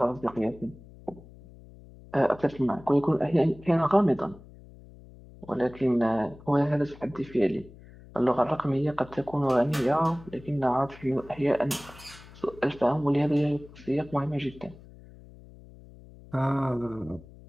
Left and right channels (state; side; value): noise; left; hum, 20 dB below the sound